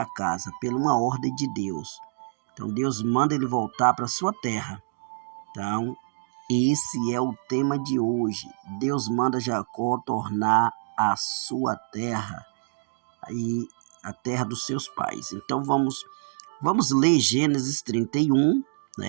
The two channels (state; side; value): silent; left; digital silence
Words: casa por uma ordem de Deus. Então Deus manda ele voltar para sua terra. Então esse é o tema de hoje. Deus manda Jacó tornar a sua terra e a terra dos seus pais. Então vamos ler Gênesis 31,